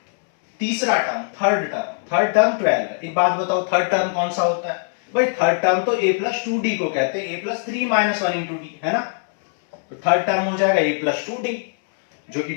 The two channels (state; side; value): silent; right; 65 dB below the other